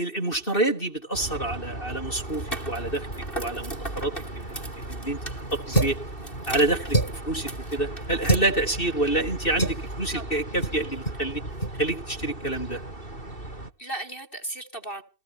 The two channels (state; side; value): late; right; 2.7 ms